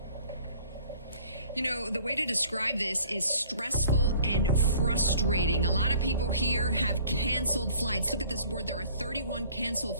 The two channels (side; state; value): both; inverted; correlation -0.52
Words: You know, the way to describe this is stressful and frustrating. A lot of people here have canceled flights. Look at this board. There are 31 canceled